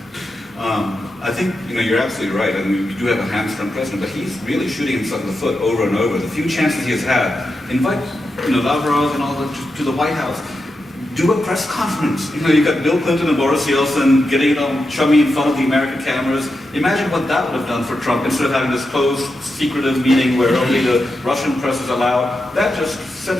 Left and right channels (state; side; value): normal; both; correlation 0.88